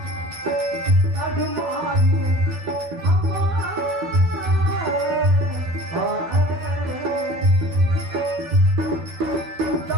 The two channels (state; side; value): late; left; 12 ms